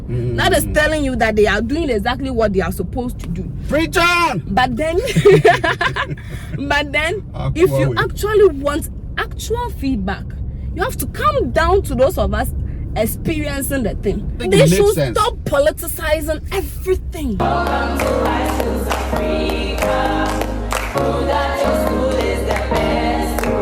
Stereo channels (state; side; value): identical; both; correlation 1.00